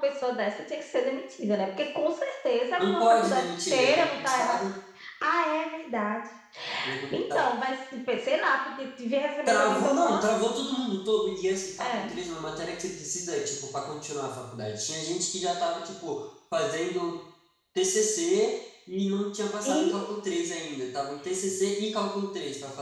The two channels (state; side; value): identical; both; correlation 1.00